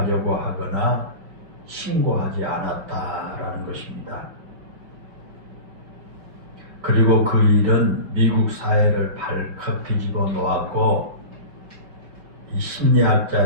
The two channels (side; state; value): left; late; 5.6 ms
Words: 하거나 신고하지 않았다라는 것입니다. 그리고 그 일은 미국 사회를 발칵 뒤집어 놓았고 이